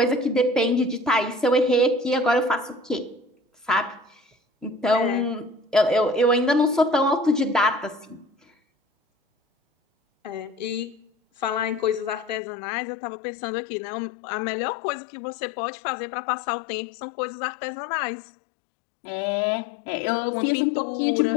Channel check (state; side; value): drops out; right; at 12.4 s